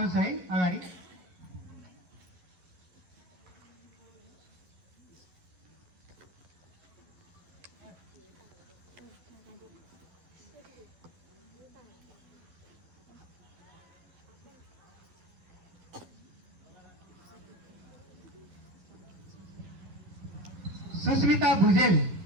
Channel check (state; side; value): late; left; 12 ms